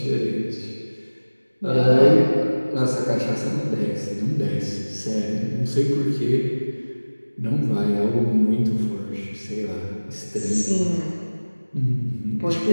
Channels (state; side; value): inverted; both; correlation -1.00